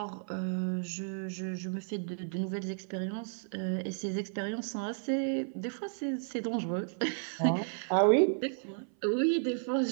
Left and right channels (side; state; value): left; silent; 56 dB below the other